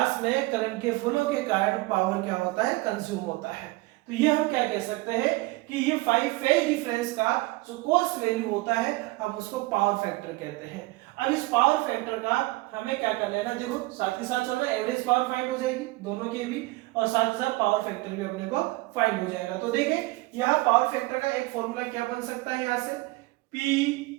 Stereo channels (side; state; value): left; quieter; 21.6 dB